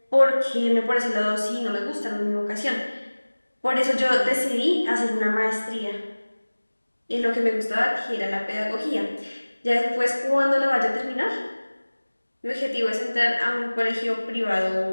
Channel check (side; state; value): both; inverted; correlation -1.00